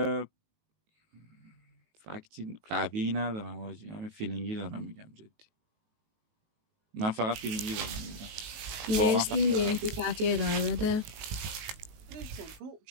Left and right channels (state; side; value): late; left; 19 ms